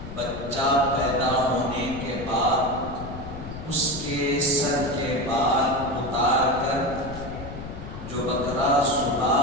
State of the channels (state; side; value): noise; left; rumble, 11 dB below the sound